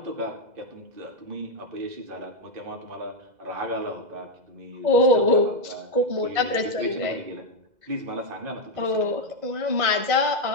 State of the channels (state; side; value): late; left; 2.0 ms